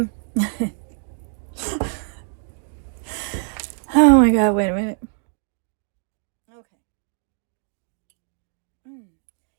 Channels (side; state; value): left; silent; digital silence